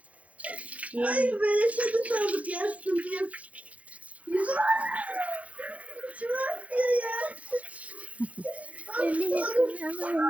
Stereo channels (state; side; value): late; left; 0.067 ms